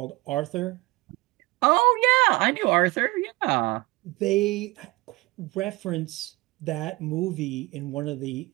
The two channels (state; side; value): quieter; left; 22.3 dB